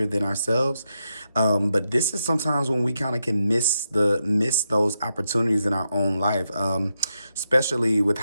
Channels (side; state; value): both; inverted; correlation -0.84